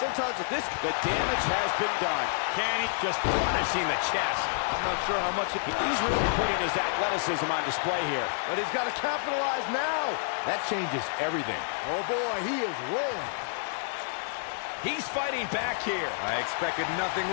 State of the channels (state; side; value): silent; right; 59 dB below the other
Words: with this, the damage has been done. Can he just punishing the chest? I'm not sure how much He's really putting his athleticism on display here. but he's got to capitalize now. That changes everything. Oh boy, he is rolling. He's fighting back here. I expected nothing